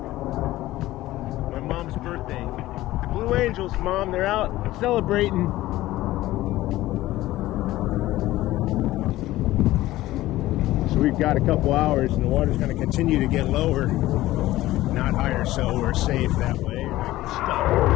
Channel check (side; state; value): right; quieter; 16.3 dB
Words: my mom's birthday. The Blue Angels, Mom, they're out celebrating. We've got a couple hours and the water's going to continue to get lower, not higher, so we're safe that way.